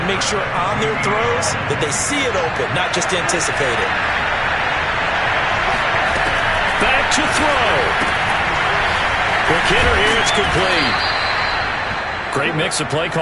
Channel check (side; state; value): both; identical; correlation 1.00